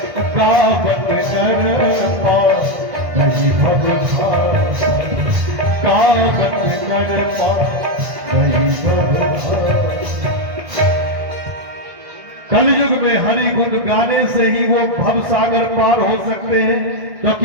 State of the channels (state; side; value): late; left; 1.6 ms